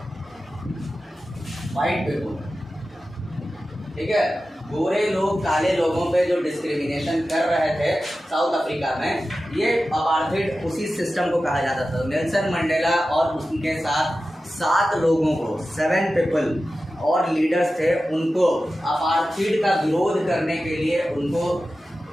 पीपल। ठीक है, गोरे लोग काले लोगों पे जो डिस्क्रिमिनेशन कर रहे थे साउथ अफ्रीका में, ये अपार्थाइड उसी सिस्टम को कहा जाता था। नेल्सन मंडेला और उनके साथ 7 लोगों को, 7 पीपल और लीडर्स थे, उनको अपार्थाइड का विरोध करने के लिए उनको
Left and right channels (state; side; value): normal; both; correlation 0.94